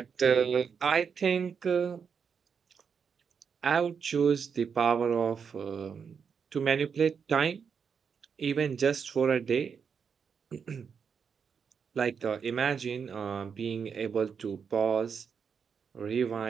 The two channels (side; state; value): left; quieter; 6.5 dB